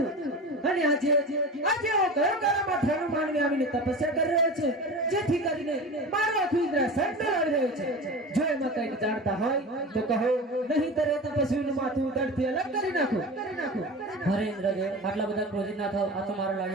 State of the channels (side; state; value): both; normal; correlation 0.31